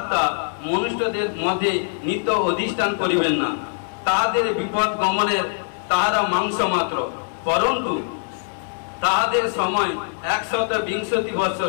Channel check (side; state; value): right; silent; digital silence